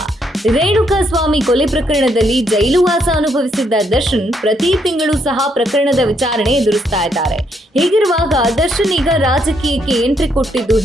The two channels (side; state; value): both; normal; correlation 0.74